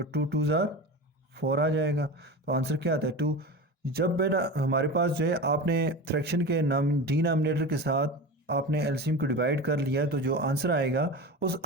2 ज़ार 4 आ जाएगा। तो आंसर क्या आता है 2। जब बेटा हमारे पास जो है आपने फ्रैक्शन के डिनोमिनेटर के साथ आपने एलसीएम को डिवाइड कर लिया, तो जो आंसर आएगा उस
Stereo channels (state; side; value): normal; both; correlation 0.29